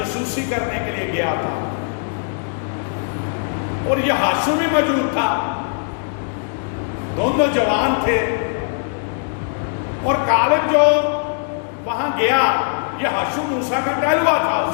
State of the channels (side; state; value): right; silent; digital silence